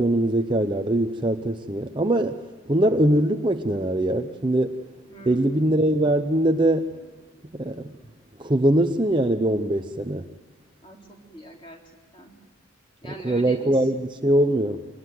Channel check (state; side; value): normal; both; correlation 0.70